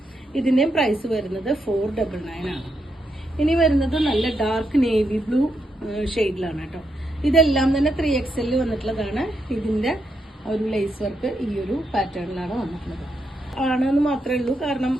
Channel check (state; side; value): normal; both; correlation 0.82